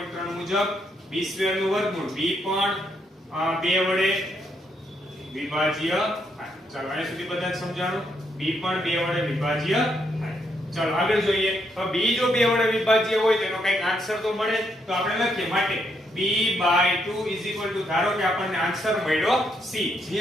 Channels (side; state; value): both; normal; correlation 0.76